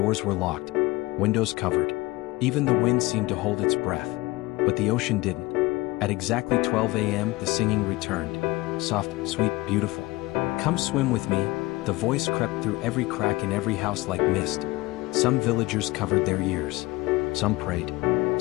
were locked. Windows covered. Even the wind seemed to hold its breath. But the ocean didn't. At exactly 12 a.m. the singing returned. Soft, sweet, beautiful. Come swim with me. The voice crept through every crack in every house like mist. Some villagers covered their ears. Some prayed.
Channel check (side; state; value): right; quieter; 20.5 dB